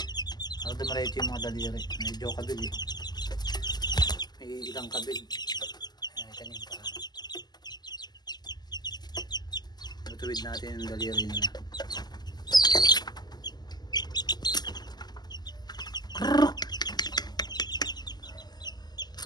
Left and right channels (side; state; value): right; late; 0.20 ms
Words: para dumalike yung mga daliri. Medyo kabig eh, may ilang kabig. Ayan, ito yung paa. Tutuwid natin yung daliri nila.